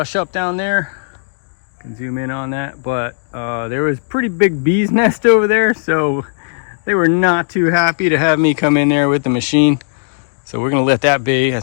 up down there. Can zoom in on that, but there was pretty big bee's nest over there, so they were not too happy to have me come in there with the machine. So we're gonna let that be. I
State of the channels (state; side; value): silent; right; 69 dB below the other